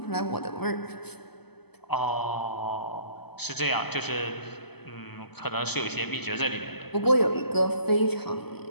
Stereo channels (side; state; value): right; late; 0.97 ms